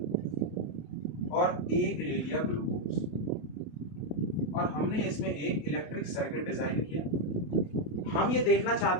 और एक ले लिया ग्लूकोज, और हमने इसमें एक इलेक्ट्रिक सर्किट डिजाइन किया। हम ये देखना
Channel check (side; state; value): right; late; 28 ms